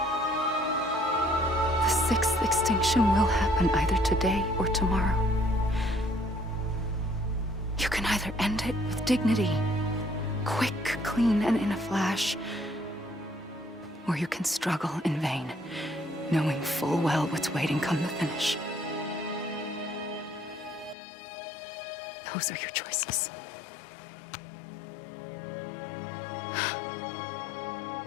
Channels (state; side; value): drops out; right; at 21.0 s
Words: The sixth extinction will happen either today or tomorrow. You can either end it with dignity, quick, clean, and in a flash, or you can struggle in vain, knowing full well what's waiting come the finish. Those are your choices.